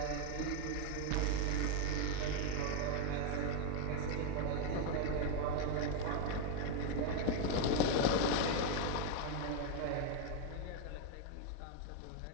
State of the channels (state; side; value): different; both; correlation 0.02